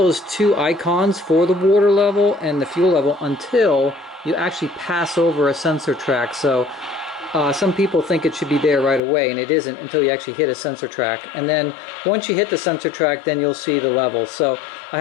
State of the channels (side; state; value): right; drops out; at 9.0 s